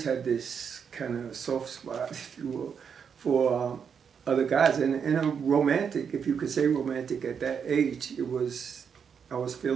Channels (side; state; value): left; quieter; 6.9 dB